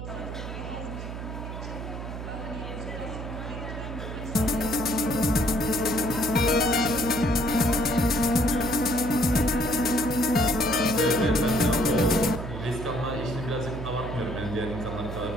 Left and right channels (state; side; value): noise; right; hum, 8 dB below the sound